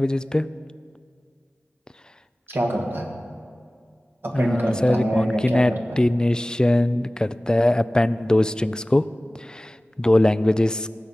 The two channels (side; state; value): both; normal; correlation 0.98